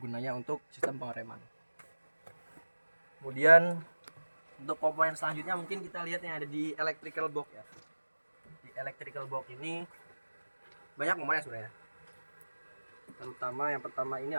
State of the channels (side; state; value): both; inverted; correlation -1.00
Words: untuk sistem pengereman. Kemudian untuk komponen selanjutnya mungkin kita lihat yang ada di electrical box ya. Di electrical box ini banyak komponen sebenarnya. Terutama yang pertama ini